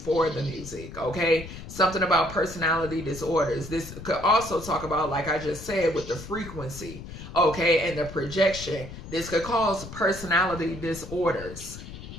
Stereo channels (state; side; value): noise; left; rumble, 12 dB below the sound